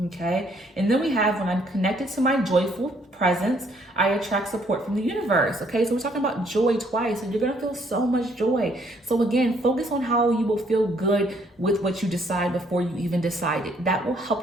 okay? And then we have, when I'm connected to my joyful presence, I attract support from the universe, okay? So we're talking about joy twice, and you're gonna feel so much joy. So again, focus on how you will feel good with what you decide before you even decide it. That will help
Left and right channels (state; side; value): normal; both; correlation 0.66